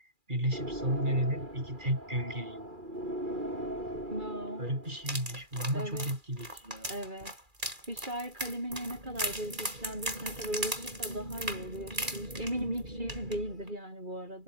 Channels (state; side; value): late; left; 2.4 ms